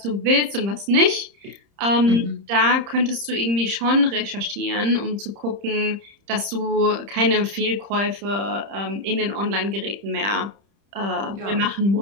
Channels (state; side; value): late; left; 30 ms